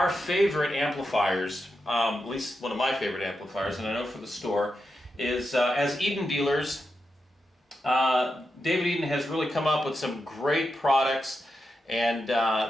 favorite amplifiers, at least one of my favorite amplifiers, and I know for the store, is as Eden dealers, David Eden has really come up with some great products. And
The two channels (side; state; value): both; normal; correlation 0.87